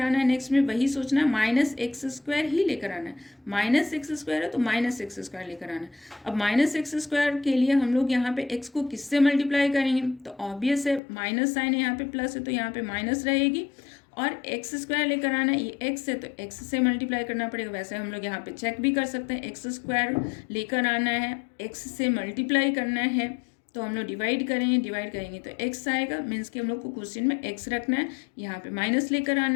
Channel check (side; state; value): right; drops out; at 11.0 s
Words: है, नेक्स्ट में वही सोचना है, -x² ही लेकर आना है। -x² है तो -x² लेकर आना है। अब -x² के लिए हम लोग यहाँ पे x को किससे मल्टीप्लाई करेंगे, तो ऑब्वियस है, माइनस साइन है, यहाँ पे प्लस है तो यहाँ पे माइनस रहेगी, और x² लेकर आना है, ये x है तो x से मल्टीप्लाई करना पड़ेगा। वैसे हम लोग यहाँ पे चेक भी कर सकते हैं, x² लेकर आना है, x से मल्टीप्लाई करना है, तो हम लोग डिवाइड करेंगे तो x आएगा, मीन्स कि हम लोग को क्वेश्चन में x रखना है। यहाँ पे माइनस लेकर